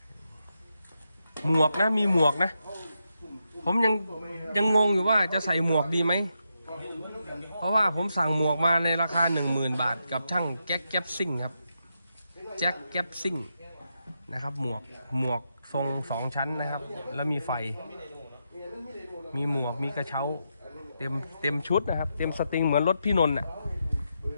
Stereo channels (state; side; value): inverted; both; correlation -0.84